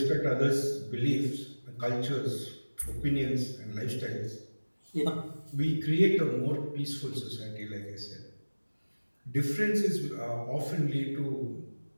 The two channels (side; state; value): both; inverted; correlation -1.00